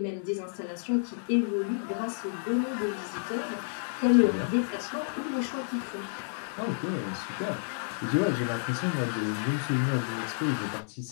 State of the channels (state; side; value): silent; right; 58 dB below the other